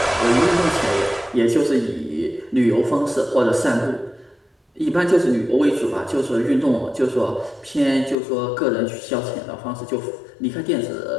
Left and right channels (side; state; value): right; drops out; at 8.2 s